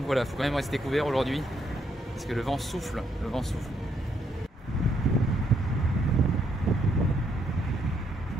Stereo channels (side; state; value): both; normal; correlation 0.74